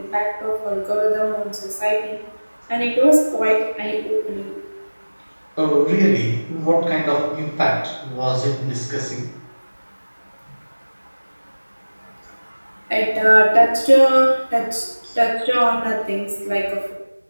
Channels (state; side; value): inverted; both; correlation -1.00